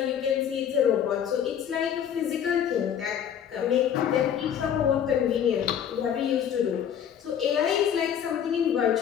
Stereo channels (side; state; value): right; quieter; 8.9 dB